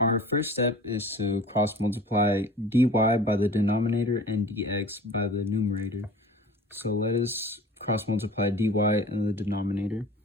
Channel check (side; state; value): both; normal; correlation 0.42